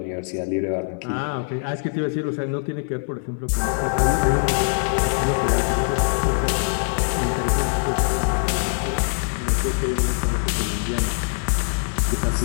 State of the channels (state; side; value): silent; right; digital silence